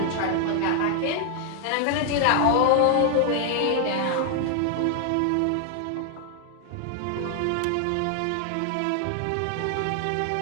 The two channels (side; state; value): both; different; correlation 0.00